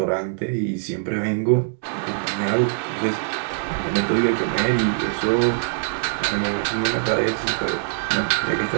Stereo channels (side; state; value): left; silent; digital silence